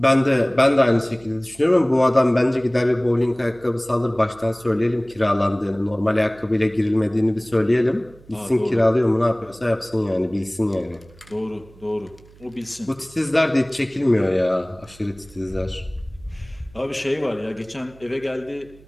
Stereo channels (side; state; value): right; noise; hum, 25 dB below the sound